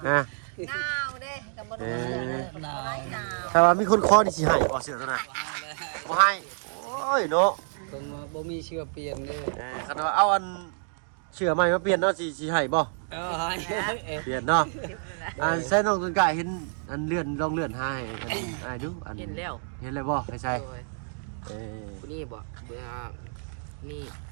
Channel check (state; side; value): silent; left; digital silence